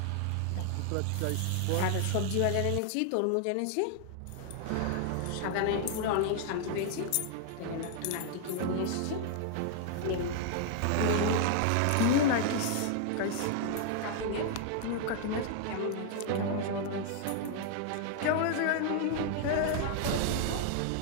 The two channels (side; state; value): both; different; correlation 0.00